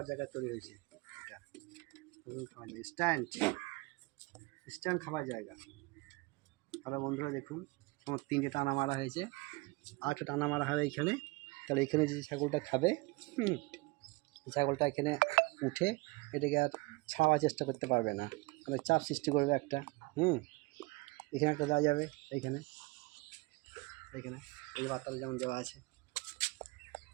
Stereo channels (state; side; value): quieter; left; 24.9 dB